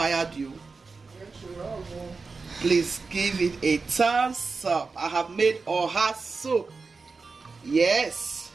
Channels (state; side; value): quieter; left; 4.3 dB